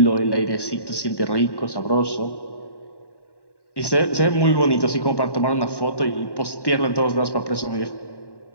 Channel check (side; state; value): right; late; 1.1 ms